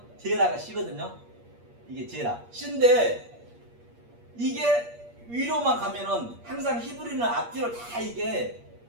제라가 씨거든요. 이게 제라. 씨인데 이게 위로만 가면은 항상 히브리는 앞뒤로 다 이게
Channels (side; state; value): left; late; 8.5 ms